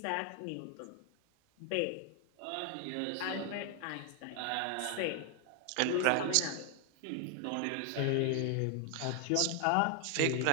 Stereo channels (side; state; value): both; different; correlation 0.00